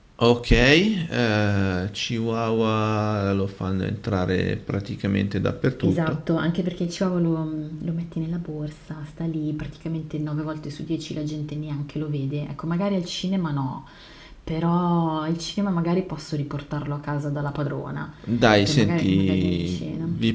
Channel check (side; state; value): both; identical; correlation 1.00